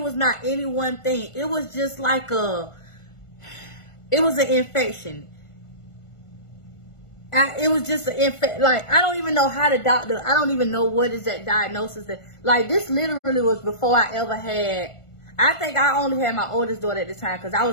was not any one thing. It was just like it was an infection. It was just an infection. Like, I don't even know how the doctor, I don't even know what is that diagnosis. That, like, this literally was before I ever had, I think I only had my oldest daughter at the time because I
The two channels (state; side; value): late; right; 1.4 ms